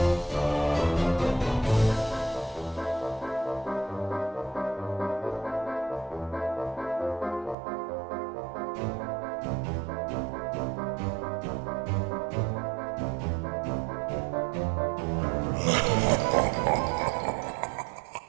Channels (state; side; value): drops out; left; at 7.6 s